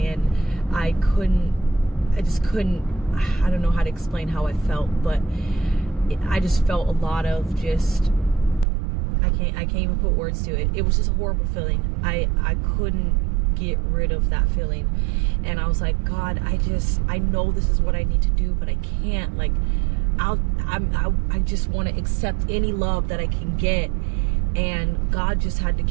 I don't know how to explain how I felt, but I just felt a lot of just, I can't even put words to it. It was just a horrible feeling. I couldn't get rid of that feeling, and I was like, God, I know this is what I need to do, but I can't. Like, I just want to accept any love that I can get. And God just had to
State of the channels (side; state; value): left; drops out; at 8.7 s